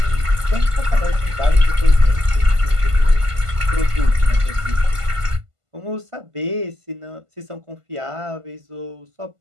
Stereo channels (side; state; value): left; late; 1.5 ms